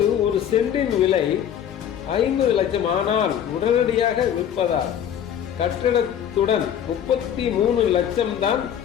ஒரு சென்டின் விலை 50 லட்சம். ஆனால் உடனடியாக விற்பதால் கட்டடத்துடன் 33 லட்சம் தான்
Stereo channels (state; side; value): quieter; right; 9.4 dB